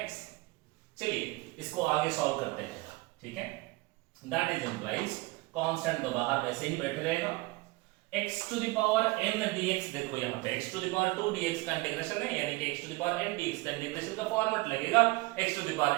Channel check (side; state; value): left; quieter; 22.9 dB